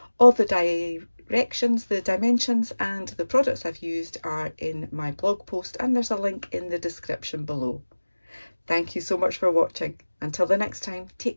All the directions, the dimensions and the products I've used are in my blog post, and there's a link in the description below. Thank you so much for watching. Until the next time, take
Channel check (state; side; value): inverted; both; correlation -1.00